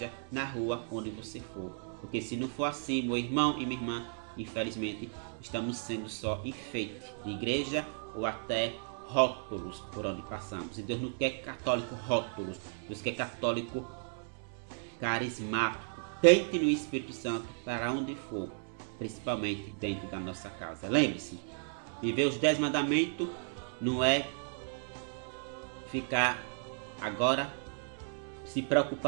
na rua, onde você for. Porque se não for assim, meu irmão e minha irmã, infelizmente, estamos sendo só enfeite de igreja ou até rótulos por onde passamos. E Deus não quer católico rótulos, Deus quer católico carismático. Tente no Espírito Santo para onde for, principalmente dentro da nossa casa. Lembre-se, viver os 10 mandamentos não é ficar agora se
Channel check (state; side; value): silent; left; 55 dB below the other